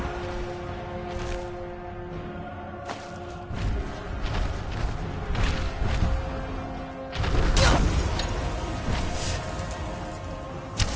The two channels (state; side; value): identical; both; correlation 1.00